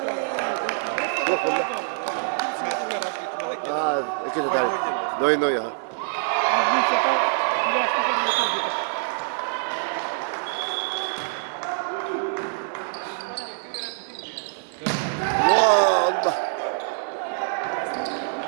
روح والله كده تعال نوي ها الله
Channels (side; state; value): left; silent; digital silence